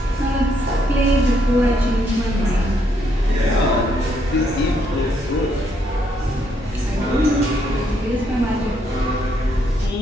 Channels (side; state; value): both; normal; correlation 0.73